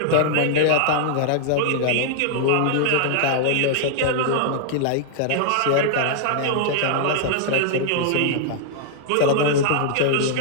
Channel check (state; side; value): different; both; correlation -0.01